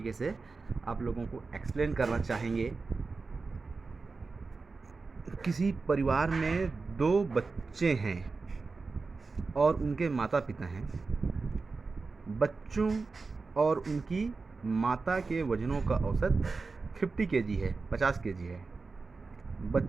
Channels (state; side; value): quieter; left; 4.1 dB